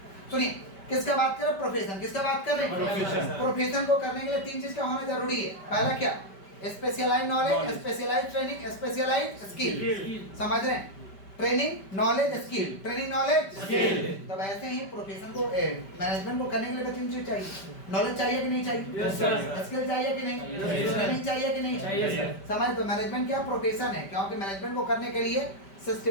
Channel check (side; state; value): right; late; 5.1 ms